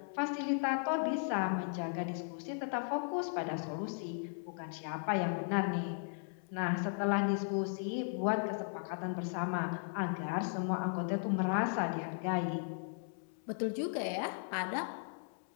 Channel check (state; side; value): silent; right; 53 dB below the other